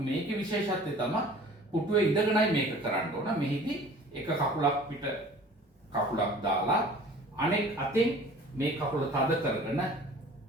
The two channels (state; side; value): normal; both; correlation 0.46